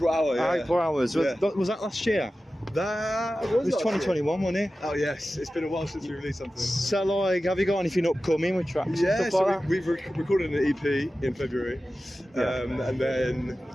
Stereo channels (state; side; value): normal; both; correlation 0.94